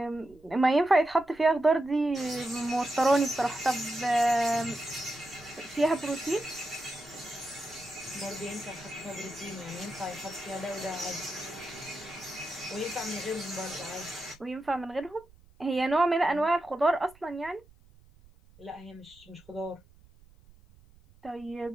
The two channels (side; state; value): right; noise; rumble, 26 dB below the sound